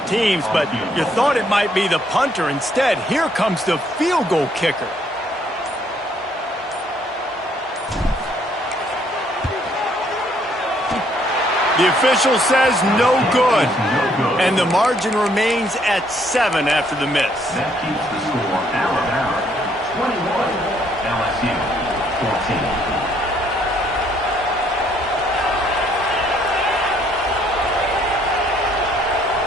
teams, but you thought it might be the punter. Instead, here comes the field goal kicker. The official says no good, and the margin remains at 7 after the miss. That keeps the score Alabama 21, LSU 14.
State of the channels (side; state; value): both; normal; correlation 0.67